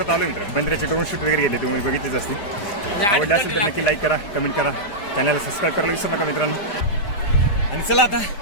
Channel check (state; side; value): late; right; 4.9 ms